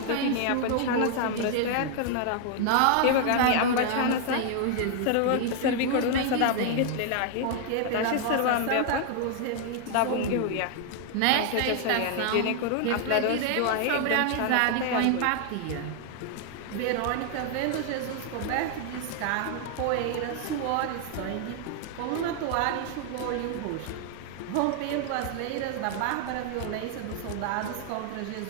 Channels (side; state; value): both; different; correlation 0.00